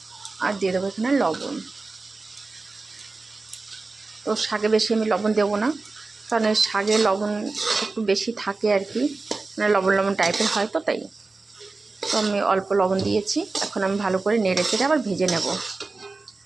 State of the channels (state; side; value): quieter; left; 3.7 dB